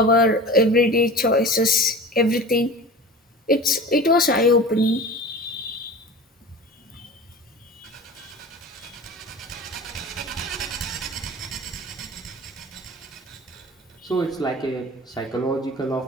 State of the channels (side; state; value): both; normal; correlation 0.36